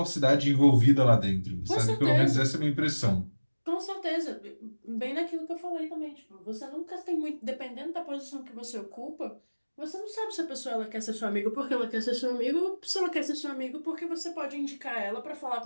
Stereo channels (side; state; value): both; inverted; correlation -1.00